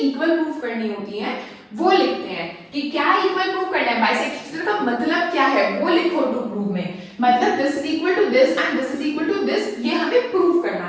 प्रूव करनी होती हैं वो लिखते हैं कि क्या इक्वल प्रूव करना है। बाइसेक्ट ईच अदर का मतलब क्या है वो लिखो टू प्रूव में, मतलब this is equal to this and this is equal to this, ये हमें प्रूव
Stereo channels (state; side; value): identical; both; correlation 1.00